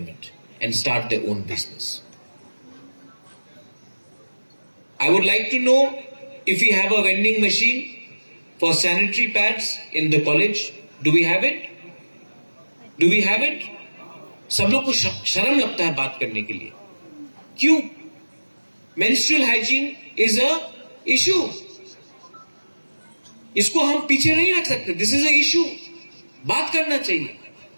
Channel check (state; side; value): inverted; both; correlation -1.00